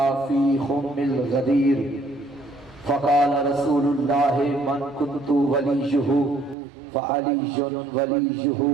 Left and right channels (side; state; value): left; drops out; at 6.6 s